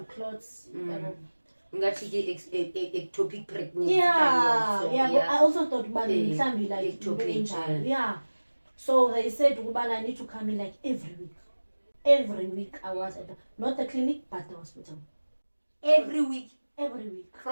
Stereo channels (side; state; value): both; inverted; correlation -1.00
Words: clots. Ectopic pregnancy. But I also thought it can be like ectopic. So they said I need to come in like every week. Every week I was at not the clinic but the hospital. Every week.